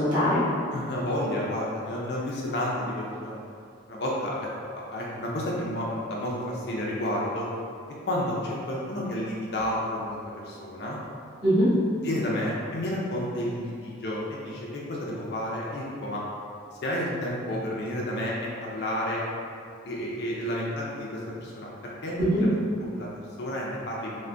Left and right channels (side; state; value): both; normal; correlation 0.43